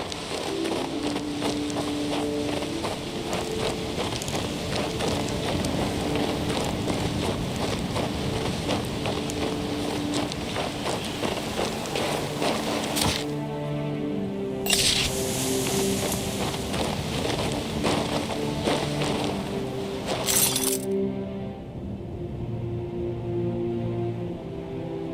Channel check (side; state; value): both; identical; correlation 1.00